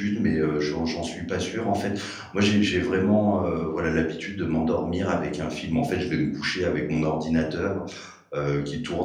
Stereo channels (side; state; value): both; identical; correlation 1.00